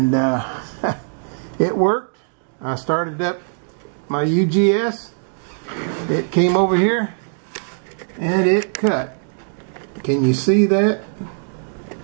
it worked. I started up my UGS, it came over here, and it cut. Can you see that?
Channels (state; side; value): silent; left; digital silence